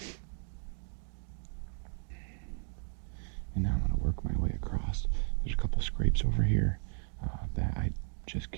And now I'm going to work my way across. There's a couple scrapes over here that I'm just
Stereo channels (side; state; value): left; silent; 55 dB below the other